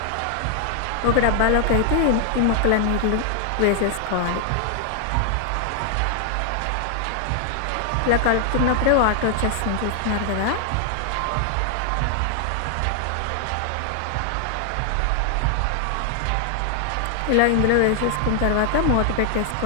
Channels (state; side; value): different; both; correlation 0.00